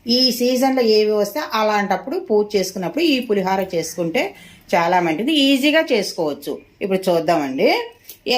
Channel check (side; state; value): both; identical; correlation 1.00